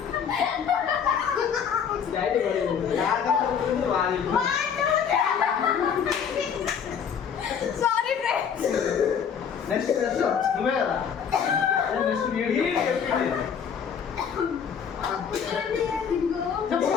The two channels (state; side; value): quieter; right; 7.3 dB